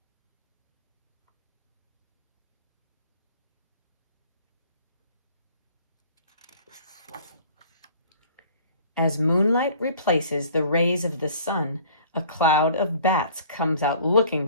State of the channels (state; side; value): inverted; both; correlation -0.50